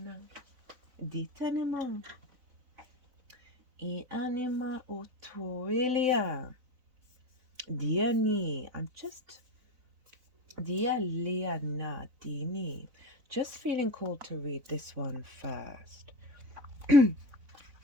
di tanema I anima oto elia diani. I'm just dia liana dini. Just feeling called to read this one first.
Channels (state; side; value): late; left; 4.0 ms